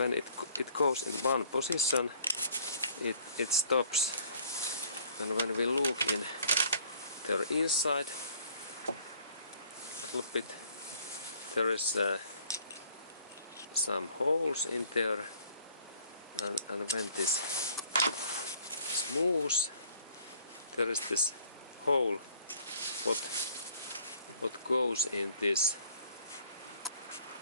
it goes in one position, it stops, and when we look in their inside a little bit, there is some holes in there, and when this moves, there is this hole what goes in this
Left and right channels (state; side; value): inverted; both; correlation -0.56